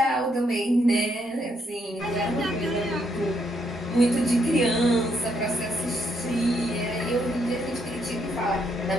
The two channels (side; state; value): both; normal; correlation 0.75